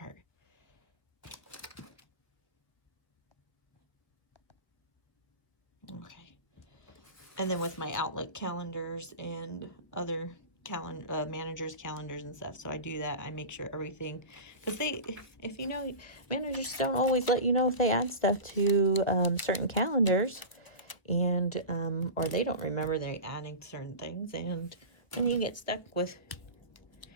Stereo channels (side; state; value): right; late; 1.2 ms